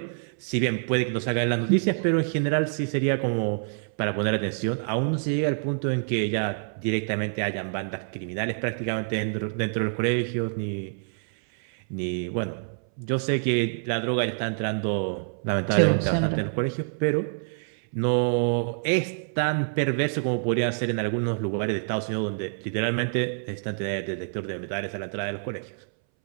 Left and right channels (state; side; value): silent; left; 60 dB below the other